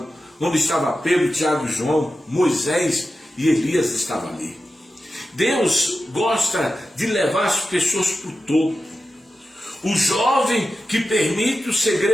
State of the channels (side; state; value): both; normal; correlation 0.92